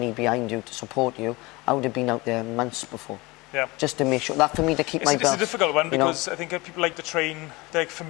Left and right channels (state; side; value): quieter; right; 23.3 dB